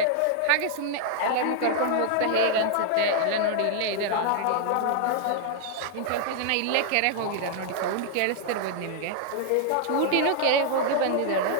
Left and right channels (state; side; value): different; both; correlation -0.01